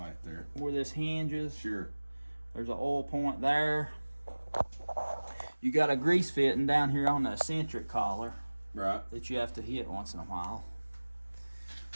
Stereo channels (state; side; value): inverted; both; correlation -1.00